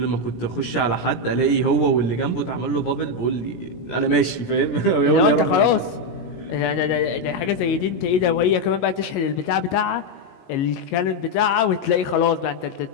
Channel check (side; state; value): right; late; 17 ms